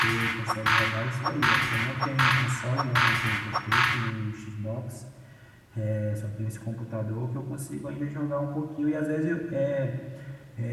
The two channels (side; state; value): both; identical; correlation 1.00